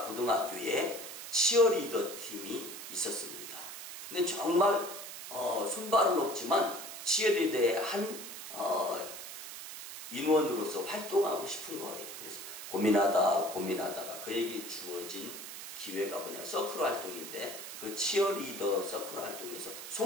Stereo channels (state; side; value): noise; right; hiss, 10 dB below the sound